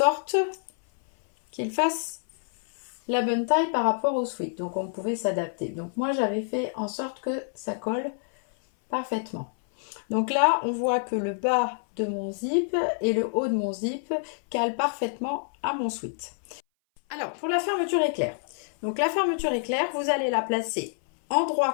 qu'il fasse la bonne taille par rapport au sweat, donc on pouvait s'adapter. Donc moi j'avais fait en sorte que ça colle parfaitement. Donc là on voit que le bas de mon zip et le haut de mon zip calent parfaitement à mon sweat. Alors pour la fermeture éclair, donc la fermeture éclair, vous allez la placer endroit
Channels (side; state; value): right; silent; 59 dB below the other